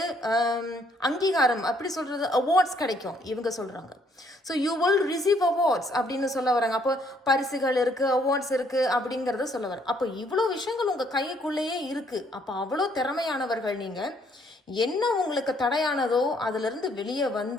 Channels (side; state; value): both; normal; correlation 0.67